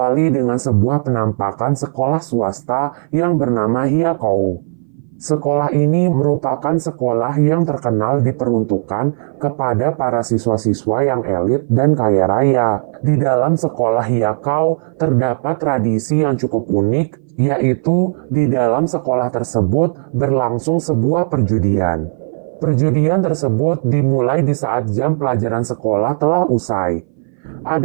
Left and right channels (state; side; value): silent; left; 59 dB below the other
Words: dengan sebuah penampakan sekolah swasta yang bernama Hyakou. Sekolah ini merupakan sekolah yang terkenal diperuntukkan kepada para siswa-siswa yang elit dan kaya raya. Di dalam sekolah Hyakou terdapat tradisi yang cukup unik, yaitu di dalam sekolah tersebut berlangsung sebuah perjudian. Perjudian tersebut dimulai di saat jam pelajaran sekolah telah usai.